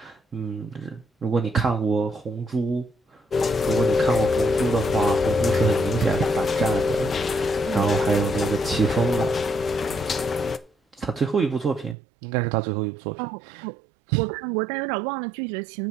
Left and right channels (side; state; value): left; drops out; at 12.0 s